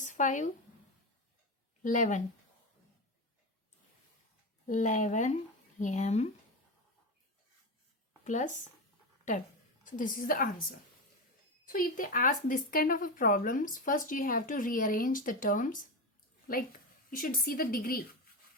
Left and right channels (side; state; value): both; normal; correlation 0.18